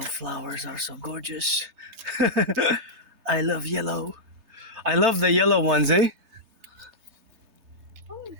flowers are so gorgeous. I love yellow. I love the yellow ones, eh? Oh, this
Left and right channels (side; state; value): left; late; 3.3 ms